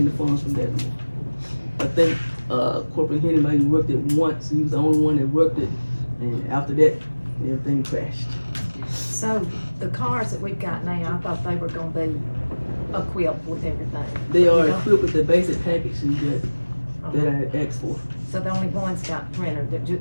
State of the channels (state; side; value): inverted; both; correlation -1.00